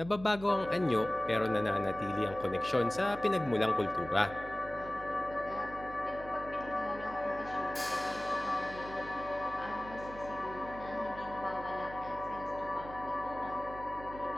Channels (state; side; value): noise; right; hum, 14 dB below the sound